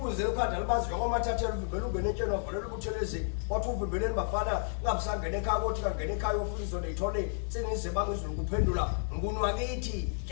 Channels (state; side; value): silent; right; 57 dB below the other